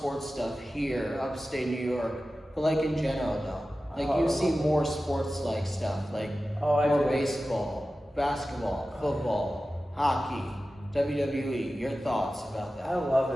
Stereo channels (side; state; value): both; normal; correlation 0.94